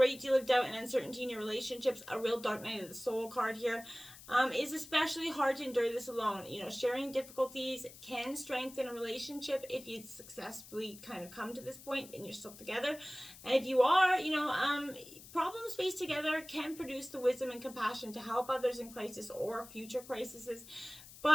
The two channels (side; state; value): left; noise; hiss, 17 dB below the sound